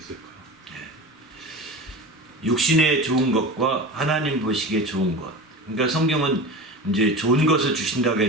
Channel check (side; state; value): both; normal; correlation 0.31